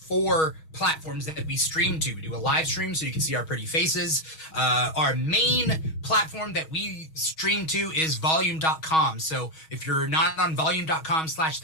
platforms that we stream to. We do a live stream so you can see our pretty faces. Our main platform that we stream to is volume.com. So if you're not on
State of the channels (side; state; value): right; late; 6.3 ms